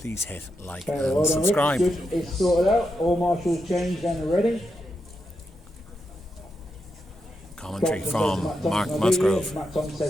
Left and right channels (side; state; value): both; normal; correlation 0.85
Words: hit like and subscribe. It's sorted out. All marshals changed and ready. Commentary from Mark Musgrove. Matt Thompson